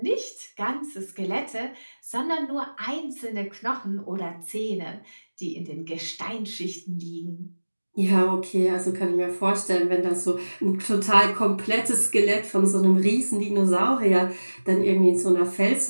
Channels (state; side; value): inverted; both; correlation -1.00